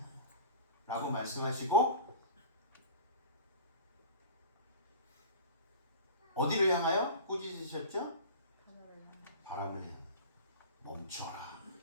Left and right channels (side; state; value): both; inverted; correlation -0.35